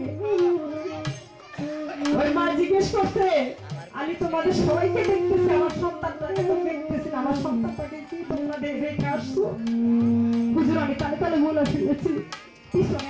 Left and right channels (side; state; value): both; identical; correlation 1.00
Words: ওই মা জিজ্ঞেস করছে, আমি তোমাদের সবাইকে দেখতেছি, আমার সন্তানটাকে তো দেখতেছি না, আমার সন্তানটাকে কি তোমরা রেখে আসছো? হুজুর, আমি তালে তালে বলে ফেলেছি, পিছনে